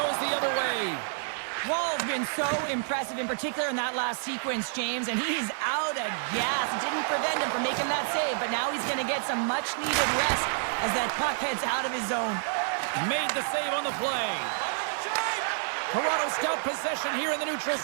the other way. Wall's been so impressive, in particular in that last sequence, James, and he's out of gas. It didn't prevent him from making that save, but now he's going to get some much-needed rest as that puck heads out of his zone. Made the save on the play. Toronto's got possession here in the neutral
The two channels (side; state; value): left; silent; digital silence